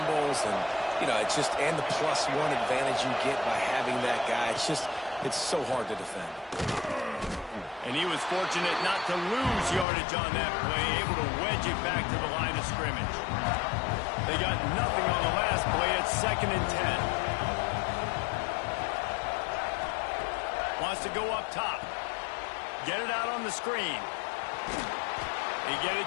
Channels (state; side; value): drops out; right; at 9.9 s